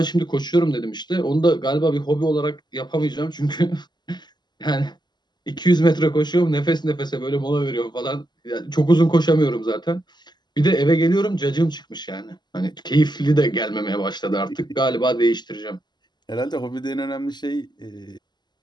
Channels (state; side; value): late; right; 0.21 ms